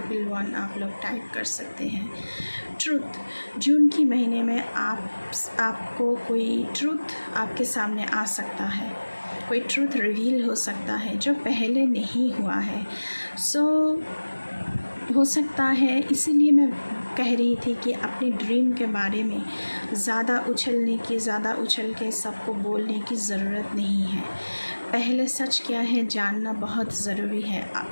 आप लोग टाइप कर सकते हैं। ट्रुथ, जून की महीने में आपको कोई ट्रुथ आपके सामने आ सकता है, कोई ट्रुथ रिवील हो सकता है जो पहले नहीं हुआ है। सो हो सकता है, इसीलिए मैं कह रही थी कि अपने ड्रीम के बारे में ज़्यादा उछल के सबको बोलने की ज़रूरत नहीं है। पहले सच क्या है जानना बहुत ज़रूरी है।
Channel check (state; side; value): inverted; both; correlation -1.00